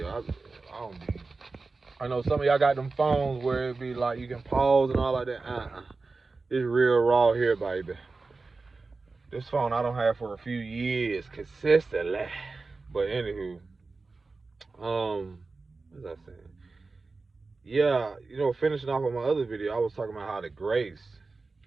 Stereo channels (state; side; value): quieter; left; 3.8 dB